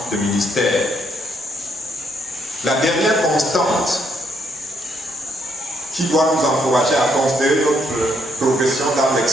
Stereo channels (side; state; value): both; normal; correlation 0.73